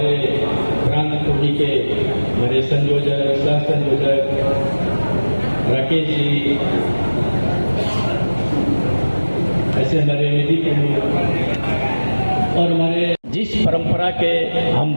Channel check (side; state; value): both; inverted; correlation -1.00